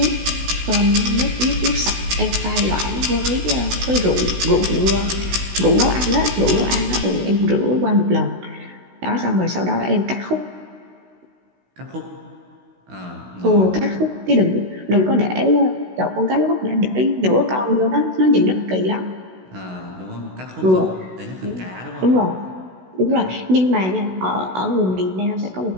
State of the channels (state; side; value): late; left; 16 ms